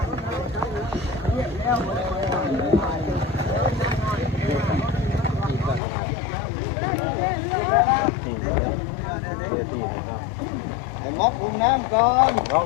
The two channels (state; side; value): drops out; right; at 5.8 s